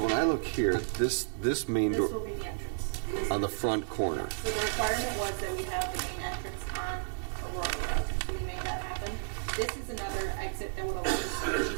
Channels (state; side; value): silent; left; 56 dB below the other